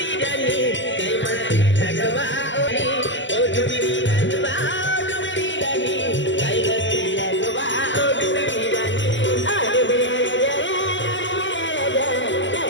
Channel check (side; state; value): right; late; 0.54 ms